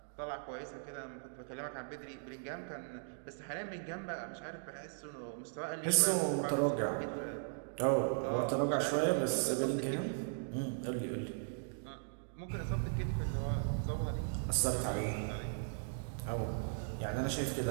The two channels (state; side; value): silent; left; digital silence